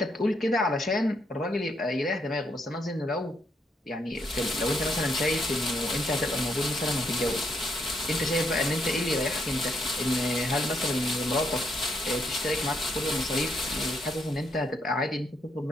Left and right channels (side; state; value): both; normal; correlation 0.75